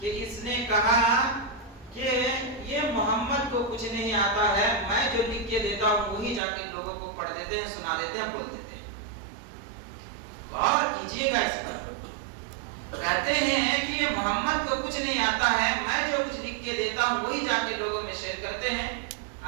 اس نے کہا کہ یہ محمد کو کچھ نہیں آتا ہے، میں جو لکھ کے دیتا ہوں وہی جا کے لوگوں کو پڑھ دیتے ہیں، سنا دیتے ہیں، بول دیتے ہیں۔ غور کیجئے گا اس پر، کہتے ہیں کہ یہ محمد کو کچھ نہیں آتا ہے، میں جو کچھ لکھ کے دیتا ہوں وہی جا کے لوگوں میں شیئر کرتے ہیں۔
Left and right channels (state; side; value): drops out; left; at 6.4 s